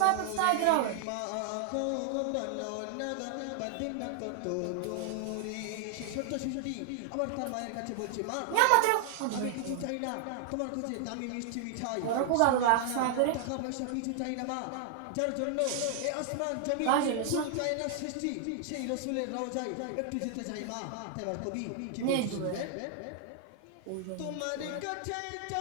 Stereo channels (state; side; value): different; both; correlation 0.00